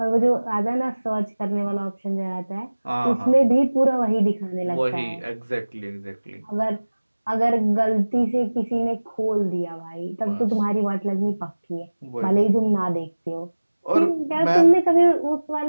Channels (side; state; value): both; inverted; correlation -1.00